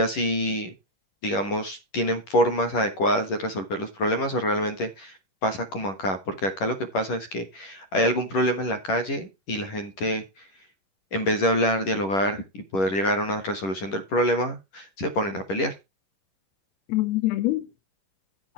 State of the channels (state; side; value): late; right; 10 ms